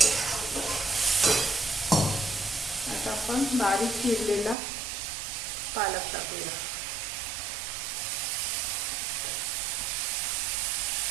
आता आपण बारीक चिरलेला पालक टाकूया।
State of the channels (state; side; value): drops out; left; at 4.5 s